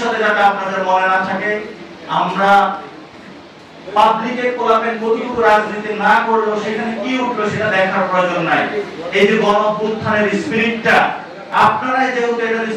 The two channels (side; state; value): both; identical; correlation 1.00